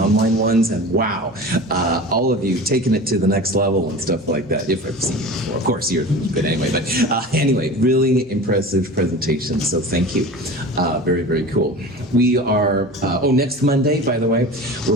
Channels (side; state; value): both; normal; correlation 0.35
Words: ones, and wow, all of you taking it to the next level and stuff like that. If I've seen you before. Of course, you're good anyway. But anyway, really impressive presentations, so thank you. Very, very cool. We are, next Monday, by the way,